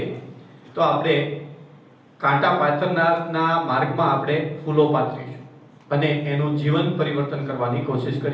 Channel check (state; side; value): identical; both; correlation 1.00